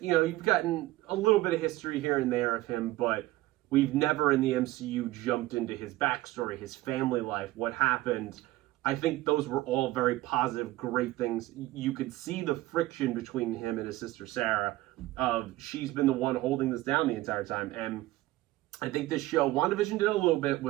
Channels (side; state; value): left; quieter; 17.5 dB